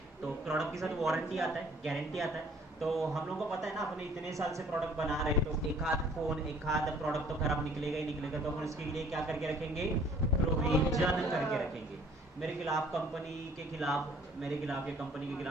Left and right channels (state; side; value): normal; both; correlation 0.57